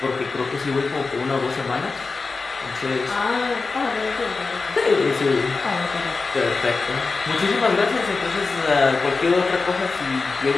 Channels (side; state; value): right; quieter; 4.1 dB